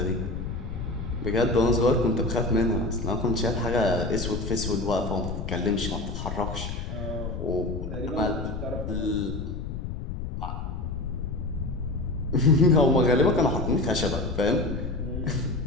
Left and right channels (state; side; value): noise; left; rumble, 5 dB below the sound